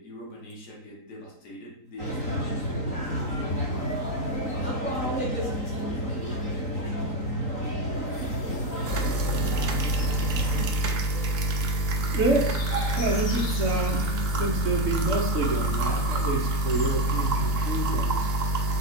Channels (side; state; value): right; late; 3.9 ms